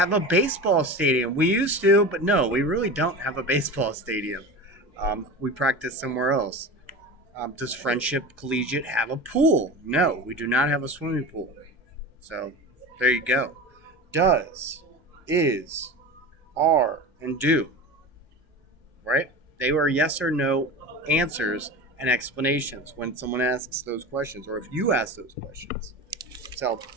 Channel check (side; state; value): both; normal; correlation 0.30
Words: a baseball stadium? We used to, but no, we really don't have a baseball stadium. We practice somewhere else. Does Friendship Collegiate have a pool? No, we do not have a swimming pool. So there you go. Does, is, are, and do. Right? They were yes or no answers and explanations when someone asks those questions or if you ask those questions. So